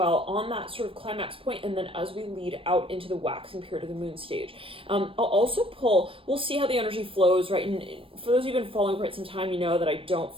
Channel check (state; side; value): late; left; 0.26 ms